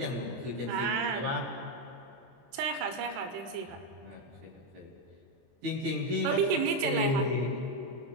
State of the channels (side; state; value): left; late; 23 ms